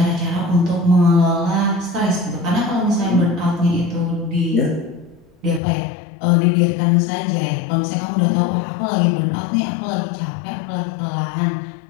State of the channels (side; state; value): right; drops out; at 5.6 s